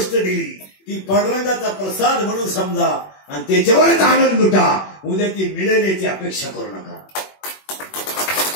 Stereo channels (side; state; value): right; late; 21 ms